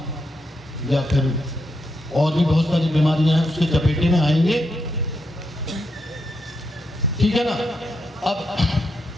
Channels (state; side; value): normal; both; correlation 0.82